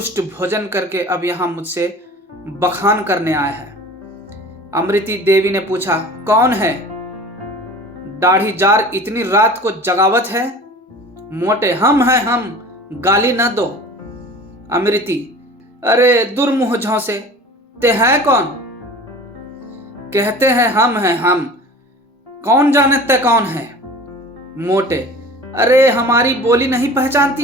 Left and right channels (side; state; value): both; normal; correlation 0.41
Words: भोजन करके अब यहां मुझसे बखान करने आया है। अमृति देवी ने पूछा, कौन है? दाढ़ी जार इतनी रात को जगावत है? मोटे, हम हैं हम, गाली न दो। अमृति, अरे दुर्मुह झौसे, ते हैं कौन? कहते हैं हम, कौन जाने ते कौन है? मोटे, अरे हमारी बोली नहीं